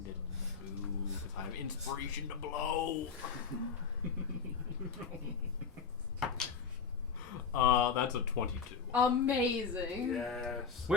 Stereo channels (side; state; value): right; quieter; 6.0 dB